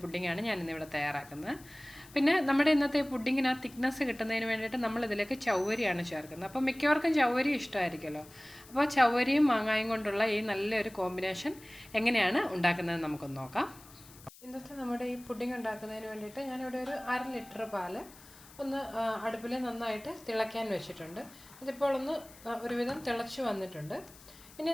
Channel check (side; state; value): left; noise; hiss, 21 dB below the sound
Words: പുഡിങ്ങാണ് ഞാനിന്നിവിടെ തയ്യാറാക്കുന്നത്. പിന്നെ നമ്മുടെ ഇന്നത്തെ പുഡിങ്ങിന് ആ തിക്നെസ് കിട്ടുന്നതിന് വേണ്ടിയിട്ട് നമ്മളിതിലേക്ക് ചവ്വരിയാണ് ചേർക്കുന്നത്. അപ്പോൾ മിക്കവർക്കും ചവ്വരി ഇഷ്ടമായിരിക്കുമല്ലോ. അപ്പോൾ ചവ്വരിയും മാങ്ങായും കൊണ്ടുള്ള ഈ നല്ലൊരു കോമ്പിനേഷൻ എങ്ങനെയാണ് ഉണ്ടാക്കുന്നത് നമുക്കൊന്ന് നോക്കാം. ഇന്നത്തെ നമ്മുടെ ഈ പുഡിങ് ഉണ്ടാക്കുന്നതിന് വേണ്ടിയിട്ട് ഞാനിവിടെ ഒരു 1/2 ലിറ്റർ പാല് ഒന്ന് അടുപ്പിൽ നന്നായിട്ട് തിളയ്ക്കാൻ വെച്ചിട്ടുണ്ട്. ഇതിപ്പോൾ ഒന്ന് ഒരുവിധം തിളച്ച് വന്നിട്ടുണ്ട്. ഇനി